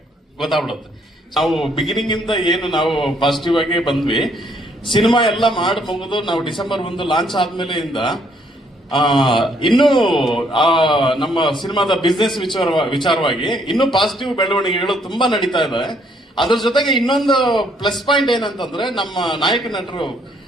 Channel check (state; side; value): normal; both; correlation 0.68